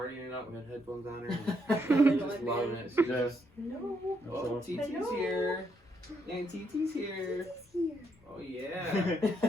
it up with headphones on her. Really Just like loving me? it. She's Yeah. just, No. oh, TT's Hello. here. And TT's here. Here. Oh, yeah.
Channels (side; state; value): both; normal; correlation 0.76